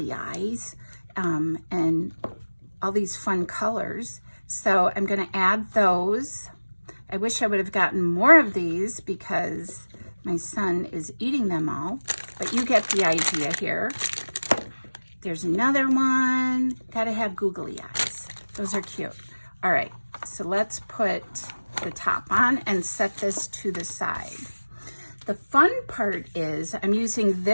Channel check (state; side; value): inverted; both; correlation -1.00